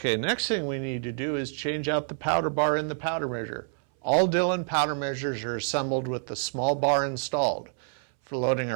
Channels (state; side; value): silent; left; 60 dB below the other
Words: next thing we need to do is change out the powder bar in the powder measure. All Dillon powder measures are assembled with the small bar installed. For loading